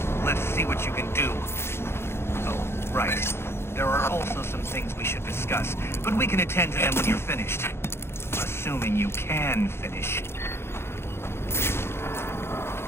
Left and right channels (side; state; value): right; late; 0.12 ms